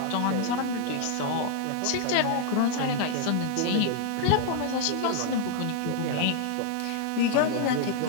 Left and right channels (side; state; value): both; different; correlation 0.00